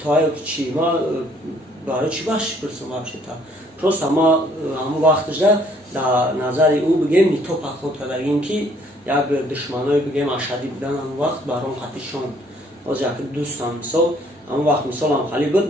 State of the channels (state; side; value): normal; both; correlation 0.63